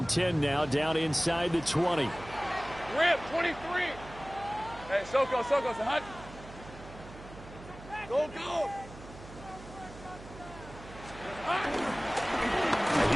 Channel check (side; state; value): right; noise; hum, 16 dB below the sound